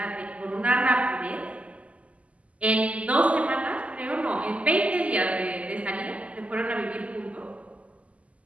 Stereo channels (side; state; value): left; late; 0.066 ms